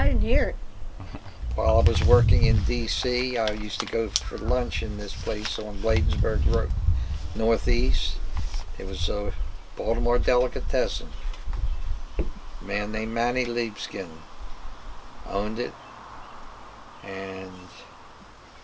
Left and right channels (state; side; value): identical; both; correlation 1.00